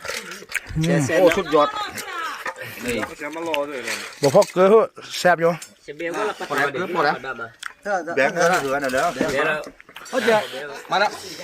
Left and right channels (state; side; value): identical; both; correlation 1.00